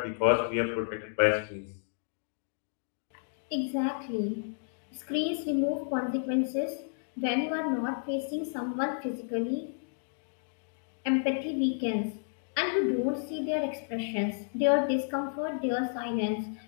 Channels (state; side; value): silent; right; digital silence